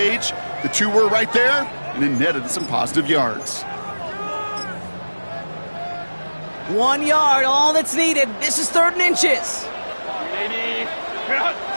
The two were right there, and it netted some positive yards. 1 yard, all that's needed. This is 3rd and inches.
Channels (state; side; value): inverted; both; correlation -1.00